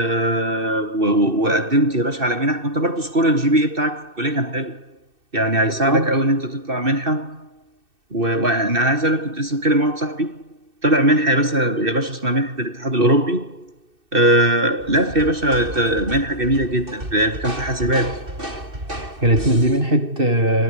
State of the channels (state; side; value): late; left; 2.6 ms